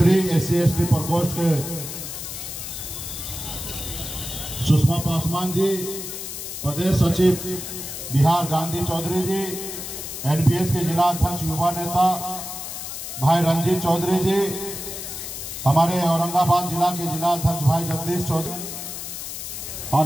SC/ST प्रकोष्ठ के सुषमा पासवान जी, प्रदेश सचिव बिहार गांधी चौधरी जी, NPS के जिला अध्यक्ष युवा नेता भाई रंजीत चौधरी जी, हमारे औरंगाबाद जिला के जिला अध्यक्ष भाई जगदीश चौधरी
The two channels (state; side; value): noise; left; hiss, 8 dB below the sound